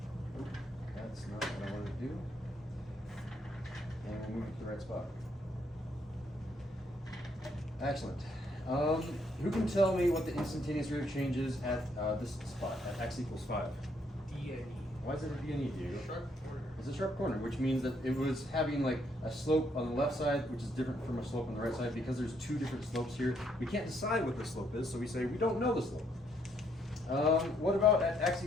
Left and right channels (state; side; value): normal; both; correlation 0.71